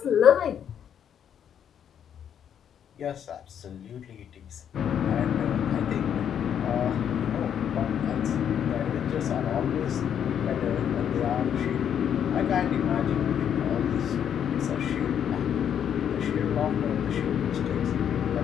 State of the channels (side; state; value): right; quieter; 8.9 dB